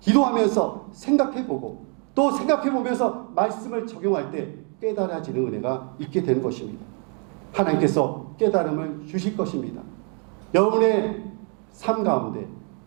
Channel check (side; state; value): left; quieter; 38.2 dB